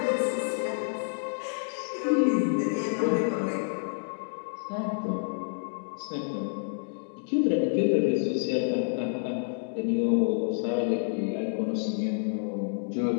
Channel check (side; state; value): right; silent; digital silence